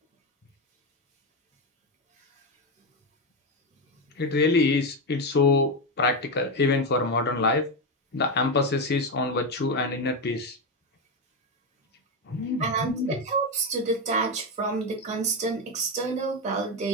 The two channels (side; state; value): both; normal; correlation 0.10